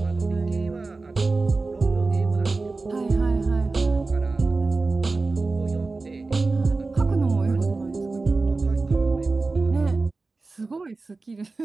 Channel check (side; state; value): left; quieter; 3.7 dB